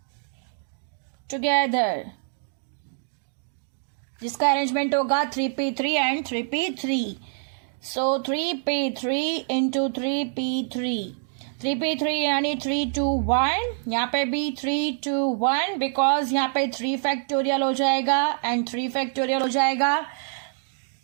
together, जिसका अरेंजमेंट होगा 3p3 and 3p3. So 3p3 into 3p3. 3p3 यानी 3 2 1. यहाँ पे भी 3 2 1 बिकॉज यहाँ पे 3 फैक्टोरियल हो जाएगा एंड 3 फैक्टोरियल हो जाएगा.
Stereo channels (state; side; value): silent; left; digital silence